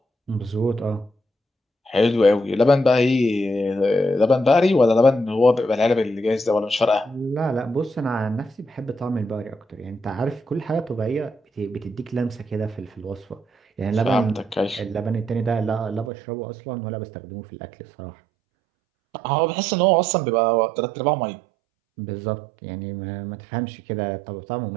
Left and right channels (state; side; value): drops out; left; at 16.1 s